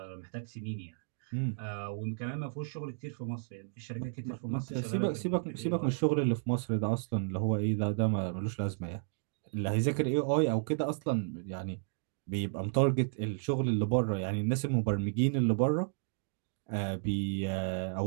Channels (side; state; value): left; silent; digital silence